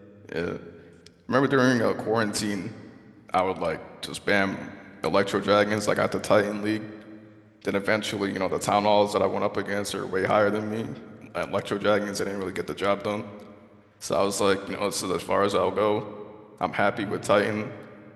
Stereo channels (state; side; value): identical; both; correlation 1.00